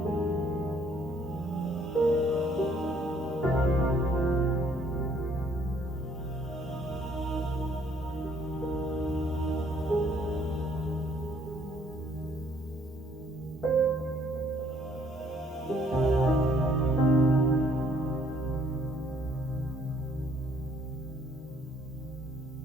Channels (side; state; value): both; normal; correlation 0.64